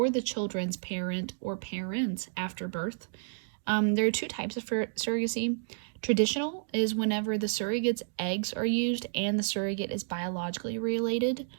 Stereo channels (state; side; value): silent; left; digital silence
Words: the children's parent or parents after birth. There are two types of surrogacy. Traditional is whenever the surrogate's eggs are used and the surrogate is biologically related